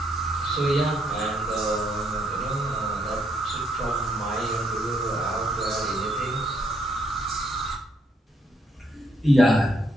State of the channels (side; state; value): both; normal; correlation 0.73